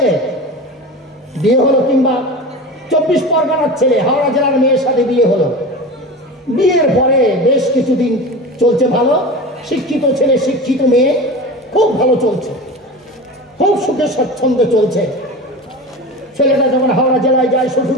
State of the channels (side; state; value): both; normal; correlation 0.30